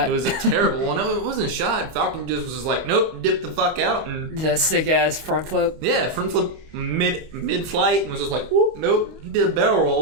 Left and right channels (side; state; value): left; late; 25 ms